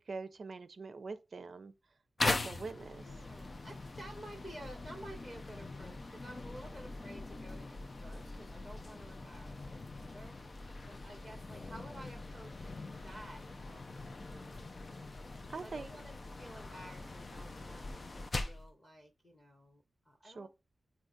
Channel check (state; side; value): normal; both; correlation 0.94